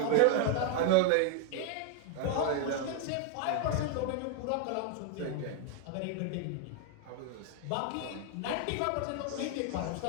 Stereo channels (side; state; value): both; different; correlation 0.00